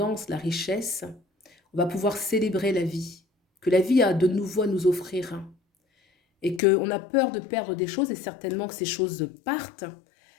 la richesse. On va pouvoir célébrer la vie, que la vie a de nouveau à nous offrir. Et qu'on a peur de perdre des choses, et certainement que ces choses partent,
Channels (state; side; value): drops out; right; at 6.6 s